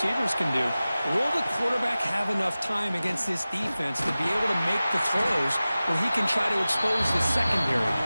can do. Will the quarterback have enough time against this defense to be able to make the throws where he can try to expose the secondary?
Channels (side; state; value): both; inverted; correlation -0.96